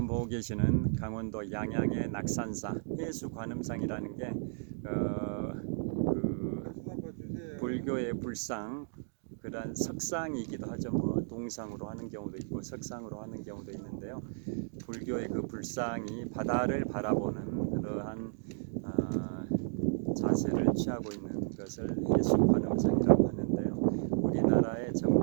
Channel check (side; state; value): left; silent; digital silence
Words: 보고 계시는 강원도 양양의 낙산사 해수 관음상이라는 게 그 불교의 불상, 그런 석상이기도 하죠. 뭐 동상으로 하는 경우도 있고 석상으로 하는 경우도 있는데요. 불교의 그 불상이 바다를 바라보는 그러한 자세를 취하고 있는 것을 해수 관음상이라고 하는데요. 우리나라의